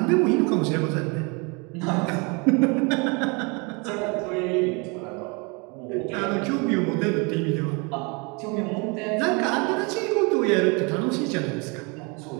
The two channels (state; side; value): quieter; left; 30.5 dB